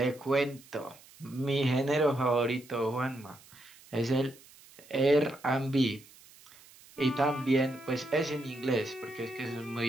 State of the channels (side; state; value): right; noise; hiss, 24 dB below the sound